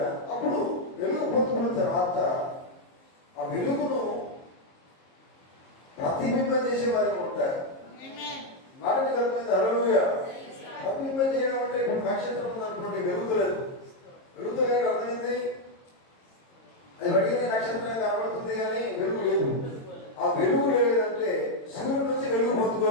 అప్పుడు వెలుగు పొందుకున్న తర్వాత ఆ వెలుగును ప్రతిబింబం చేసే వారికి ఉంటారు. మాటని కలిపింది. హల్లెలూయా. ప్రతిబింబం చేయడం అంటే ఇప్పుడు నక్షత్రం ఉందనుకోండి, వెలుగులేదు. వెలుగులేదు అర్థమైంది. అది అడిగిన నక్షత్రం కనబడుతుంది కానీ వెలుగు లేదు. ఆ వెలుగు లేదంటే సూర్యుడి నుంచి వెలుగు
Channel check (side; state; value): right; late; 22 ms